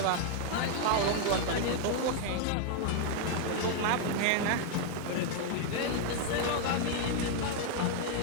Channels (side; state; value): both; different; correlation 0.00